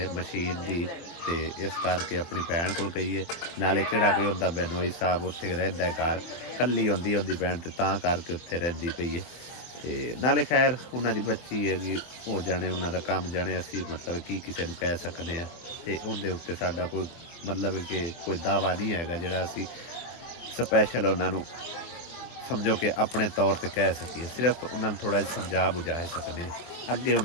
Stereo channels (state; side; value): late; right; 24 ms